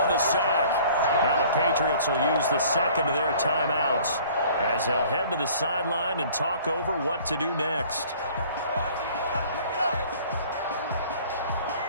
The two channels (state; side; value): inverted; both; correlation -0.52